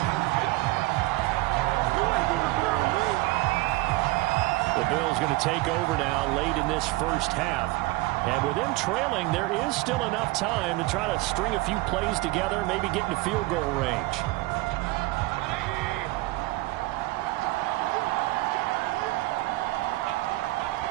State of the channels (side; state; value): left; quieter; 20.8 dB